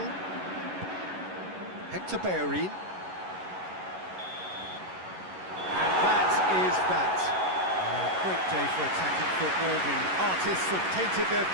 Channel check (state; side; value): late; left; 11 ms